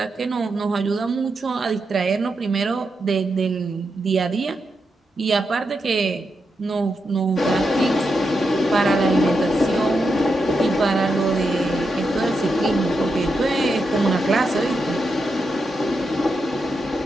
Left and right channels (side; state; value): both; normal; correlation 0.85